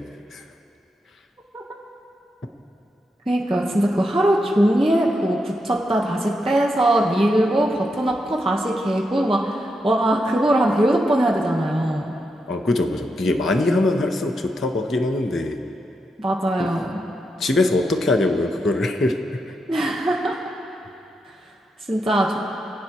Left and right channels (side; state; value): both; normal; correlation 0.84